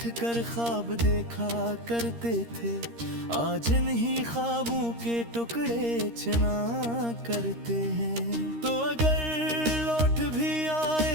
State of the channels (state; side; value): late; left; 13 ms